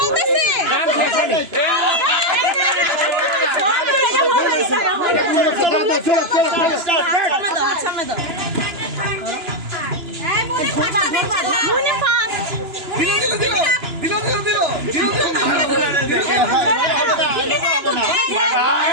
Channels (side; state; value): left; late; 2.9 ms